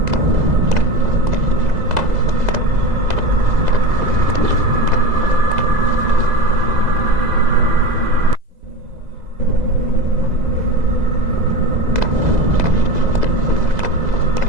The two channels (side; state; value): left; late; 2.0 ms